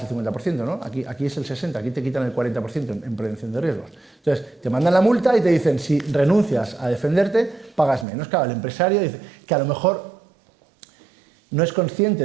el 50%, ¿no? Aquí es el 60%, aquí te quitan el 40% en prevención de riesgos. Entonces, te mandan la multa y te dicen, si renuncias a defenderte, pagas menos. Claro, el empresario dice que a lo mejor no es consciente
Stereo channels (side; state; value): left; drops out; at 8.1 s